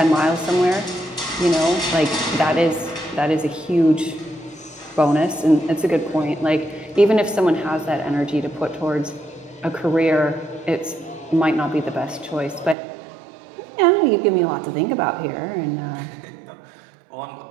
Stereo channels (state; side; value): drops out; left; at 12.8 s